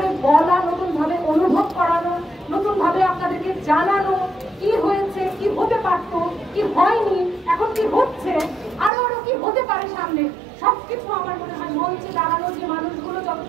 বলা, নতুন ভাবে অনুভব করানো, নতুন ভাবে আপনাদেরকে জানানো কি হয়েছে, কি হতে পারত, কি হয়নি, এখন কি হচ্ছে, আরো আরো কি হতে পারে সামনে, সবকিছু আমার মনে হয় মঞ্চে দাঁড়ানো যে মানুষগুলো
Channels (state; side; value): drops out; left; at 8.9 s